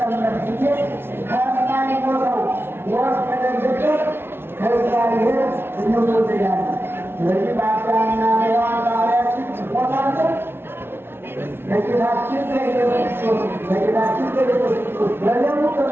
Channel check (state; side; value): late; left; 0.11 ms